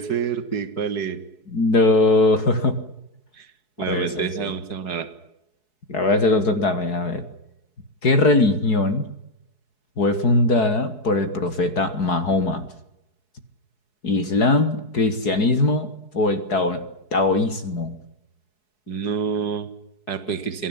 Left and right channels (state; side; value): late; right; 4.7 ms